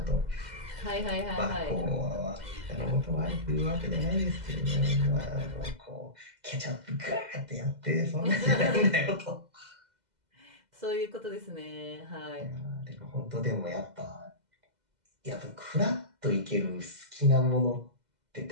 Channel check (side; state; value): left; late; 2.0 ms